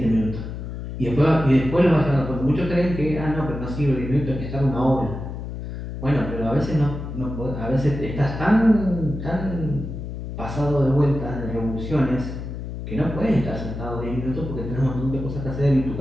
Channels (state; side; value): noise; left; hum, 7 dB below the sound